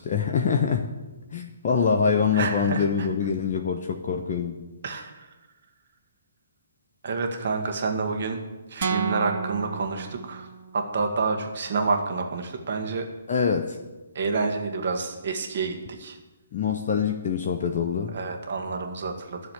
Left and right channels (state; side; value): inverted; both; correlation -0.53